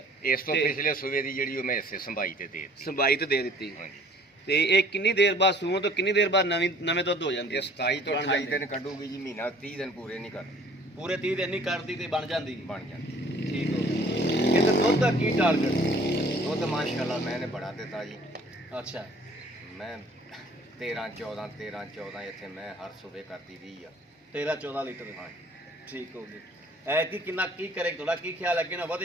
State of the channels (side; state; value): both; normal; correlation 0.53